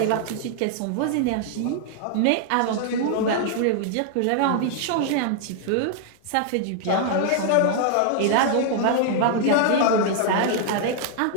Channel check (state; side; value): different; both; correlation 0.00